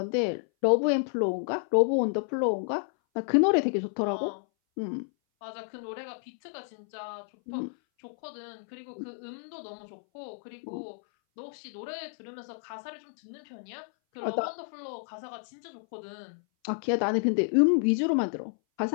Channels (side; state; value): right; silent; 58 dB below the other